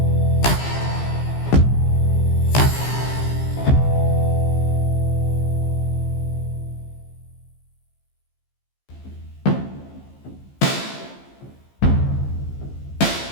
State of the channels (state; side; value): late; right; 15 ms